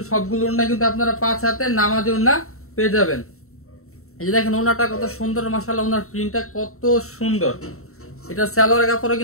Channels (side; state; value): right; late; 0.63 ms